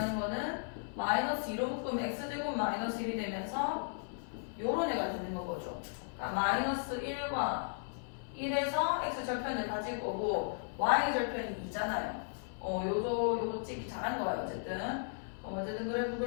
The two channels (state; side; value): silent; right; 54 dB below the other